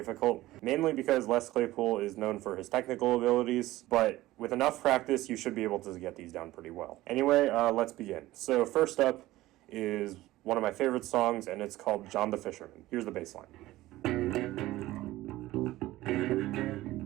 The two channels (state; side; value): quieter; left; 16.8 dB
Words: mainly because Les Claypool is known for his technical abilities, but with enough practice you should be able to get these down pretty well. Anyway, let's begin. So first up is one of my favorite songs, and it's called John the Fisherman. Here's the bassline.